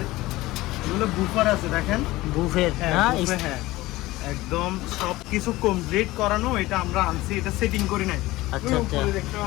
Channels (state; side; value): quieter; right; 18.5 dB